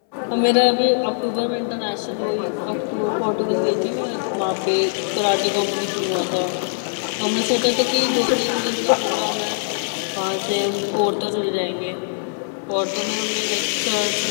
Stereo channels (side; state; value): right; silent; 64 dB below the other